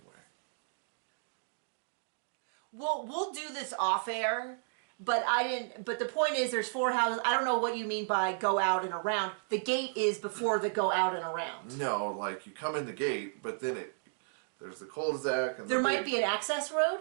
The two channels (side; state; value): left; silent; digital silence